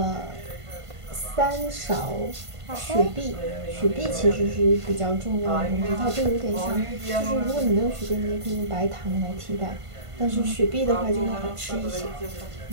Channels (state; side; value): late; left; 1.5 ms